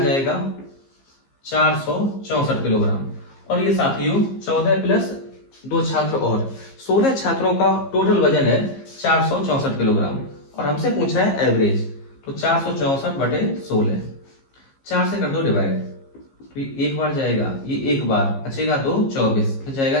464 किलोग्राम। और ये साथियों 14 प्लस 2 छात्र और 16 छात्रों का टोटल वजन है 464 किलोग्राम। और हमसे पूछ रहा है एवरेज, तो 464/16, 4 से कर दो डिवाइड, तो ये एक बार जाएगा, ये एक बार बचेगा 2 24, फिर जाएगा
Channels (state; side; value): late; right; 15 ms